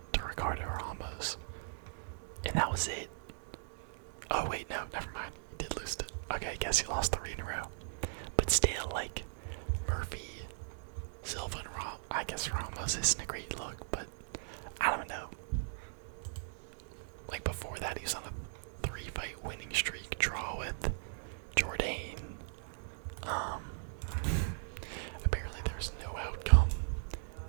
to Ricardo Ramos, and that was it. Oh wait, no, never mind. He did lose to. Okay, I guess he lost 3 in a row. But still, like, Murphy, Silva, and I guess Ramos isn't a great look, but I don't know. Like, before that, he was on a 3-fight winning streak, draw with Jourdain. Apparently there's no outcome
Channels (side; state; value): left; silent; digital silence